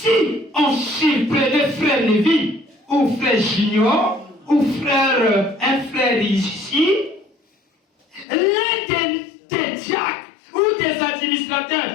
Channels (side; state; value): right; drops out; at 8.2 s